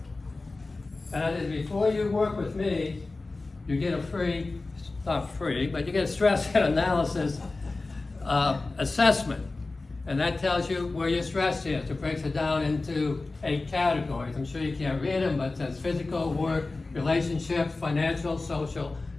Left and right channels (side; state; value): right; quieter; 3.4 dB